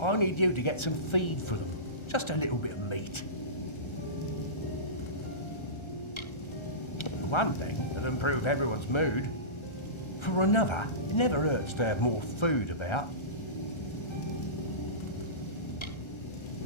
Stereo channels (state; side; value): late; right; 1.3 ms